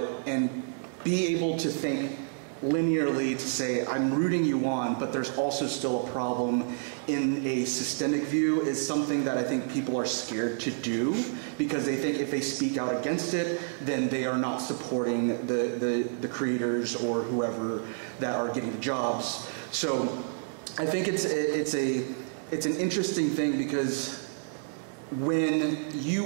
and be able to think linearly to say, I'm rooting you on, but there's also still a problem in a systemic view is something that I think people are scared to do because they think if they speak out against it, then they are not supporting the creators or whoever that are getting jobs. So I think it's an interesting thing because when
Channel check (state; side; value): silent; left; 58 dB below the other